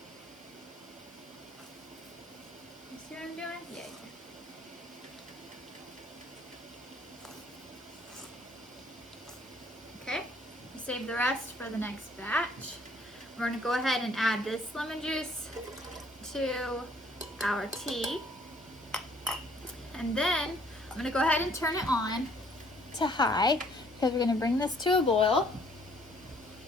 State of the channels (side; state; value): both; normal; correlation 0.62